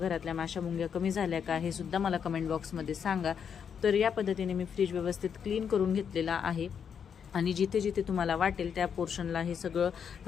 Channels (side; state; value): right; quieter; 7.4 dB